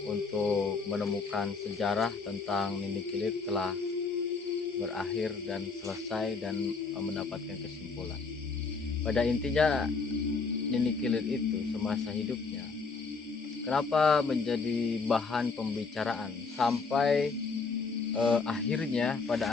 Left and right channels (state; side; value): quieter; right; 4.6 dB